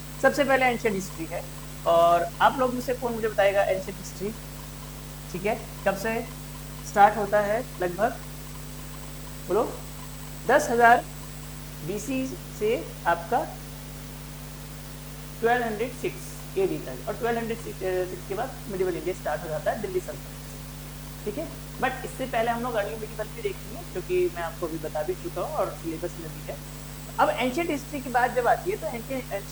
सबसे पहले एंशिएंट हिस्ट्री है, और आप लोग में से कौन मुझे बताएगा एंशिएंट हिस्ट्री, ठीक है, कब से स्टार्ट होता है लगभग, बोलो। 10,000 BC से आपका 1206 AD तक, और 1206 के बाद मिडिवल इंडिया स्टार्ट हो जाता है दिल्ली सल्तनत से, ठीक है। बट इससे पहले हम लोग अर्ली मिडिवल भी देखेंगे, क्योंकि मैं आपको अभी बता भी चुका हूँ और सिलेबस में भी है। अब एंशिएंट हिस्ट्री की बात जब आती है, तो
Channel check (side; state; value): both; identical; correlation 1.00